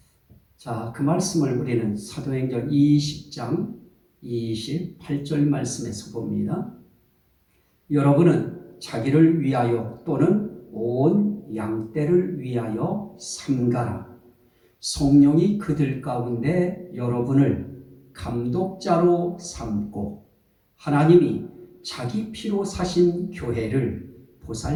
자, 그 말씀을 우리는 사도행전 20장 28절 말씀에서 봅니다. 여러분은 자기를 위하여 또는 온 양떼를 위하여 삼가라. 성령이 그들 가운데 여러분을 감독자로 삼고 하나님이 자기 피로 사신 교회를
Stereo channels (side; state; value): both; identical; correlation 1.00